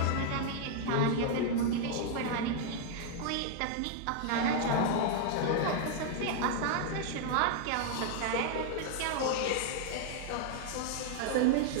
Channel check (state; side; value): different; both; correlation 0.00